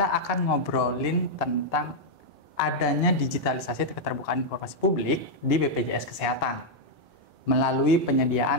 akan ngobrolin tentang adanya digitalisasi keterbukaan informasi publik di BPJS Kesehatan melalui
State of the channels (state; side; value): normal; both; correlation -0.02